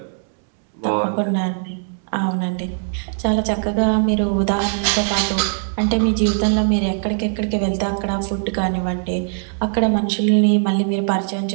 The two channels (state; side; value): silent; left; 61 dB below the other